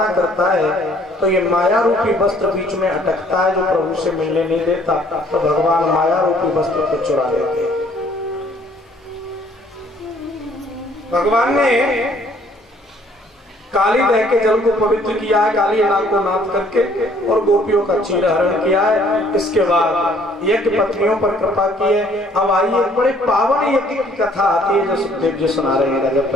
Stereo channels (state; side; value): normal; both; correlation 0.61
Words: करता है तो ये माया रूपी वस्त्र बीच में अटकता है जो प्रभु से मिलने नहीं देता, तो भगवान माया रूपी वस्त्र को चुरा लेते हैं। भगवान ने काली दह के जल को पवित्र किया है, काली नाग को नाथ करके, और गोपियों का चीरहरण किया है। इसके बाद यज्ञ पत्नियों पर कृपा की है। अब आइए बड़े पावन यज्ञ की कथा आती है जो सुखदेव जी सुना रहे हैं। राजा